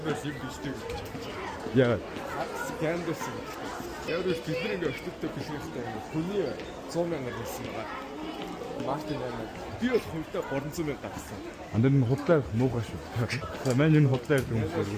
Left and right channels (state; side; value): identical; both; correlation 1.00